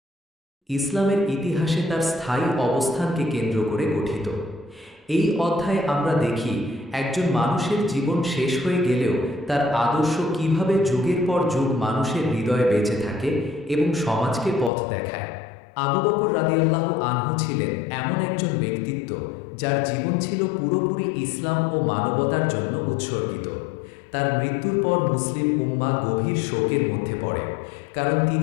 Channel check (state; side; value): drops out; right; at 14.7 s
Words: ইসলামের ইতিহাসে তার স্থায়ী অবস্থানকে কেন্দ্র করে গঠিত। এই অধ্যায়ে আমরা দেখি একজন মানুষের জীবন শেষ হয়ে গেলেও তার আদর্শ কিভাবে যুগের পর যুগ মানুষের হৃদয়ে বেঁচে থাকে এবং সমাজকে পথ দেখায়। আবু বকর রাদিয়াল্লাহু আনহু ছিলেন এমন একজন ব্যক্তিত্ব যার জীবন ছিল পুরোপুরি ইসলাম ও মানবতার জন্য উৎসর্গিত। তার মৃত্যুর পর মুসলিম উম্মাহ গভীর শোকের মধ্যে পড়ে, কারণ